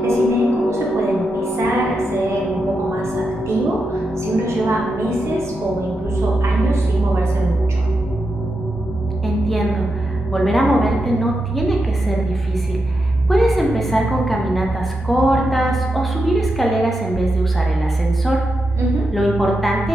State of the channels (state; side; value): normal; both; correlation 0.86